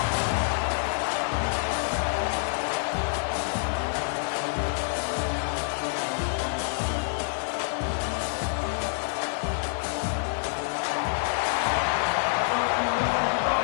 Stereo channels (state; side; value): silent; right; digital silence